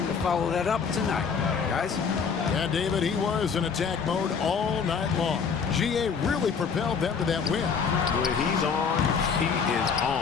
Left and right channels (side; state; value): right; quieter; 6.0 dB